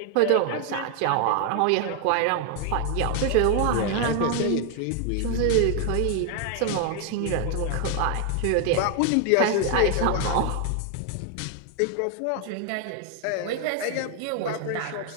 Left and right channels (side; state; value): both; different; correlation 0.01